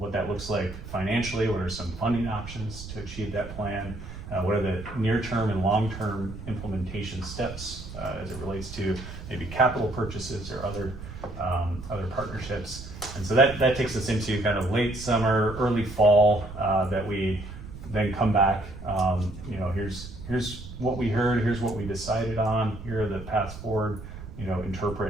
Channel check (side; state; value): right; noise; rumble, 12 dB below the sound